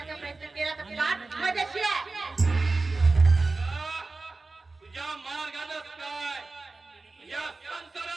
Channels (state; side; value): quieter; left; 3.6 dB